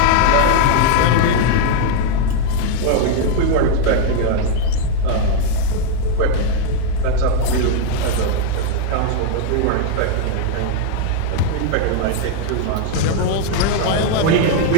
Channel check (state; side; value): different; both; correlation 0.00